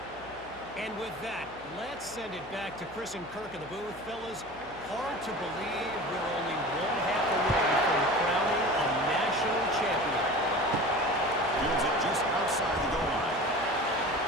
And with that, let's send it back to Chris and Kirk in the booth. Fellas, hard to believe we're only one half away from crowning a national champion. Fields it just outside the goal line.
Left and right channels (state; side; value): noise; left; hum, 21 dB below the sound